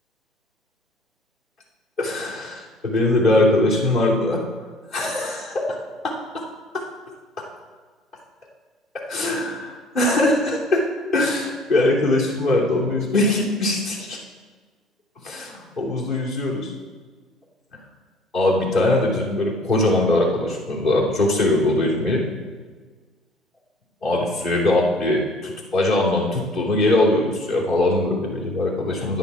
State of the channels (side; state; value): both; normal; correlation 0.53